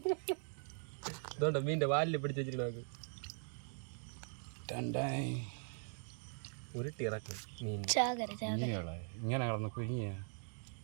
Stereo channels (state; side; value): silent; left; 51 dB below the other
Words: ഇതുകൊണ്ട് മീൻ്റെ വാലിൽ പിടിച്ച് വെച്ചിട്ട് നമുക്ക് ഉരുട്ടി ഇറക്കും മീൻ. ഇങ്ങനെ കിടന്ന് കുഞ്ഞിയ